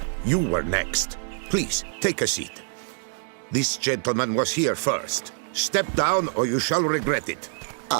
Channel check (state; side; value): silent; left; 61 dB below the other